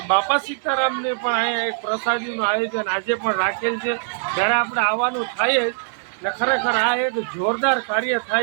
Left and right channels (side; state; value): left; silent; 64 dB below the other